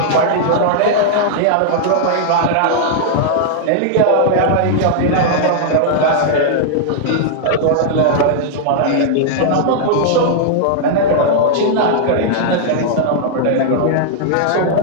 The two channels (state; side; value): different; both; correlation -0.01